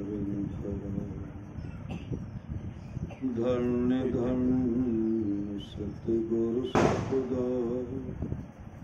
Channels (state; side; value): identical; both; correlation 1.00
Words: धन्य धन्य सतगुरु सतदार